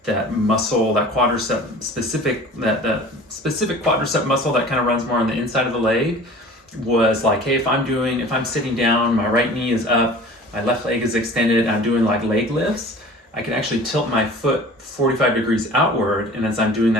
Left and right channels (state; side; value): normal; both; correlation 0.43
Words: muscle, that quadricep specific, that specific quadricep muscle that kind of runs more on the inside of the leg, was like, hey, if I'm sitting down, my right knee is up, my left leg is extended, I'm doing like leg lifts, I can actually tilt my foot 45 degrees outward, and as I'm doing